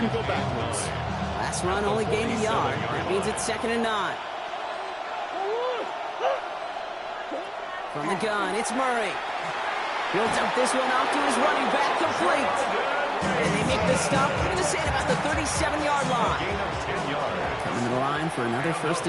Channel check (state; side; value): identical; both; correlation 1.00